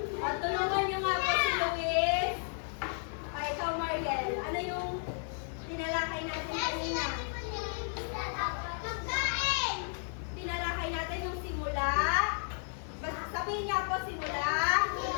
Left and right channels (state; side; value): silent; right; 56 dB below the other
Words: O, tulungan niyo nga po si Luis. O, ikaw, Mariel. Ano yung tinalakay natin kanina? Tinalakay natin yung simula. Basta sabihin niya po simula.